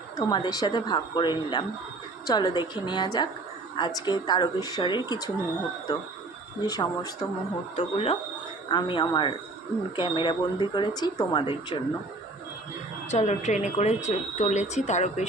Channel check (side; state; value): left; quieter; 3.0 dB